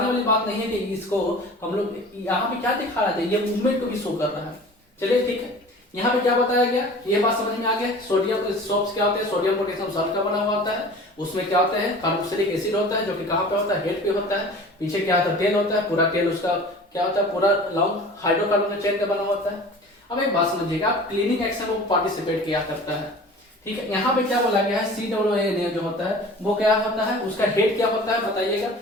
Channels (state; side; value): normal; both; correlation 0.42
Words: वाली बात नहीं है कि इसको हम लोग यहाँ पे क्या दिखा रहे थे, ये मूवमेंट को भी शो कर रहा है। चलिए ठीक है, यहाँ पे क्या बताया गया, ये बात समझ में आ गया। सोडियम सोप्स क्या होते हैं, सोडियम पोटेशियम सॉल्ट का बना हुआ होता है, उसमें क्या होता है, कार्बोक्सिलिक एसिड होता है, जो कि कहाँ पे होता है, हेड पे होता है। पीछे क्या होता है, टेल होता है, पूरा टेल उसका क्या होता है, पूरा लॉन्ग हाइड्रोकार्बन चेन का बना होता है। अब एक बात समझिएगा, क्लीनिंग एक्शन में पार्टिसिपेट किया करता है, ठीक है। यहाँ पे क्या बोला गया है, COONA जो होता है वो क्या होता है, उसका हेड क्या होता है बताइएगा,